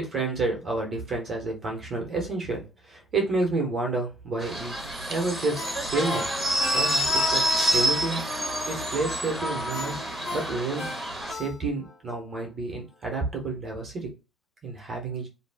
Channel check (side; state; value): both; normal; correlation 0.64